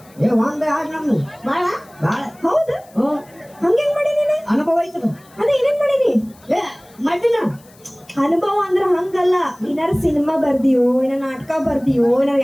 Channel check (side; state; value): left; noise; hiss, 28 dB below the sound